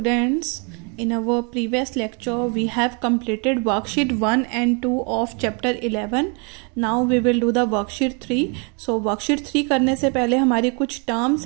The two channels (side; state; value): left; quieter; 35.5 dB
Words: in our previous lecture we have completed worksheet 1 and 2 of chapter 11. Now we will do the worksheet 3. So worksheet 3 करने से पहले हमारी कुछ terms